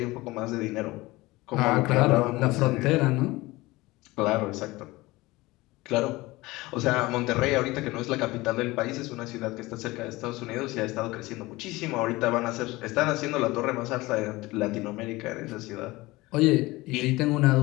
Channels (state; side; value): quieter; right; 20.6 dB